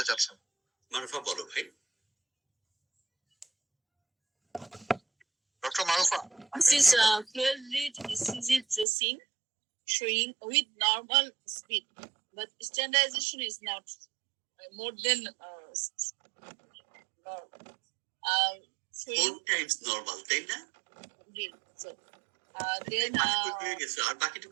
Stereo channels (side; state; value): left; drops out; at 8.8 s